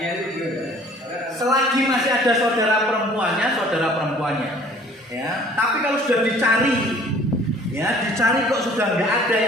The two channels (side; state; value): both; normal; correlation 0.52